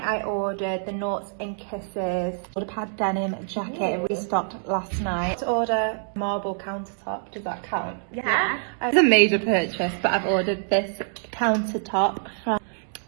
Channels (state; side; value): silent; left; digital silence